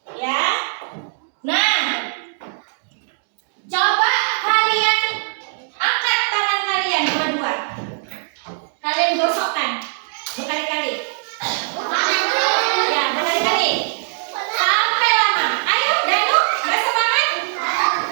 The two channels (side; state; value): left; silent; digital silence